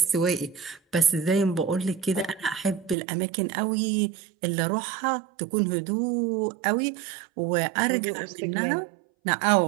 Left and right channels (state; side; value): drops out; left; at 3.0 s